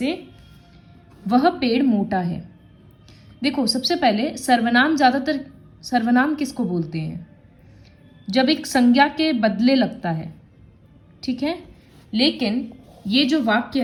वह पेड़ मोटा है। देखो, सबसे पहले सर्वनाम, ज़्यादातर सर्वनाम किसको बोलते हैं? जब एक संज्ञा के बदले लगता है, ठीक है। लेकिन ये जो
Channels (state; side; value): identical; both; correlation 1.00